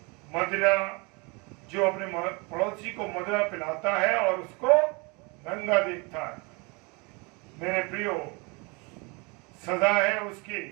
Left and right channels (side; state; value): left; quieter; 29.3 dB